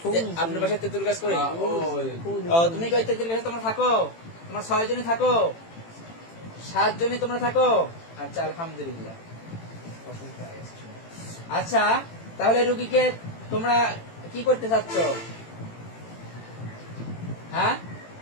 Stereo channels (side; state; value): right; late; 18 ms